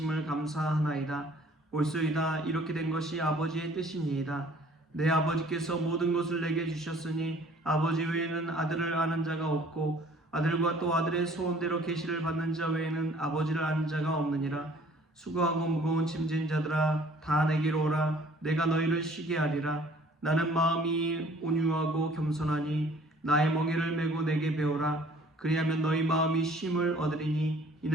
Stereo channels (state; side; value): normal; both; correlation 0.55